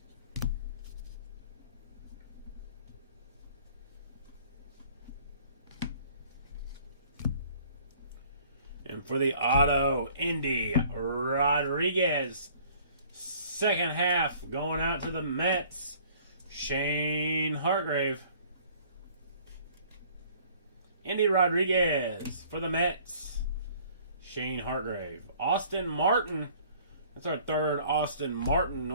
For the auto, Indy Rodriguez. Second half going out to the Mets, Shane Hargrave. Indy Rodriguez for the Mets, Shane Hargrave. Austin Martin. That's our third Austin Martin.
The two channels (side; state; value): both; inverted; correlation -0.54